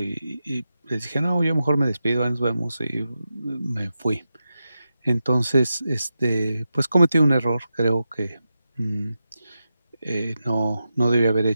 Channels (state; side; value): inverted; both; correlation -0.90